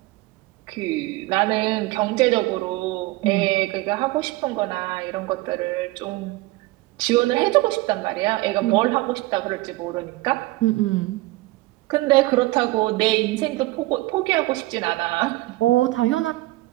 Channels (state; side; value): quieter; left; 19.9 dB